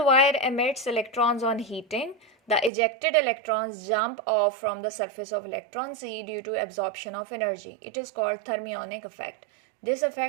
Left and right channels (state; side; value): drops out; left; at 2.7 s